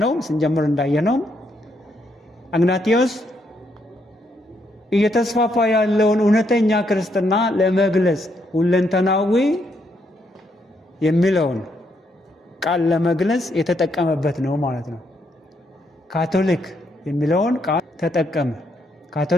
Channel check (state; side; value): normal; both; correlation 0.76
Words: ስንጀምር እንዳየነው አግናጢዮስ እየተስፋፋ ያለውን እውነተኛ ክርስትና ለመግለጽ ሁለንተናዊ የሚለውን ቃል ለመግለጽ የተጠቀመበት ነው ማለት ነው። ካቶሊክ የሚለውን ቃል ተጠቀመ።